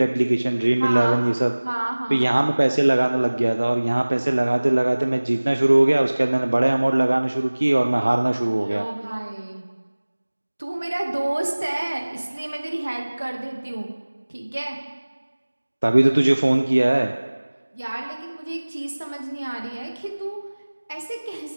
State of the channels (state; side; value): inverted; both; correlation -1.00